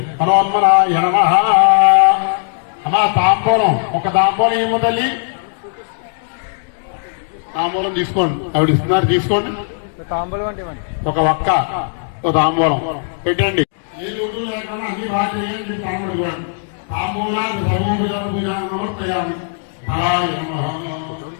హనుమన్మనాయ నమః. అమ్మా తాంబూలం, ఒక తాంబూలం ఏమో తల్లి, తాంబూలం తీసుకోండి. ఆవిడ ఇస్తున్నారు, తీసుకోండి. తాంబూలం అంటే ఒక ఒక్క ఒక తాంబూలం పెట్టండి. ఏ రోజు లేకుండా అన్ని బాగా చేయండి. తాంబూలం తాంబూలాలు సర్వోపచారం సమర్పయామి. ఫలాయ నమః.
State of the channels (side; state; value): right; silent; digital silence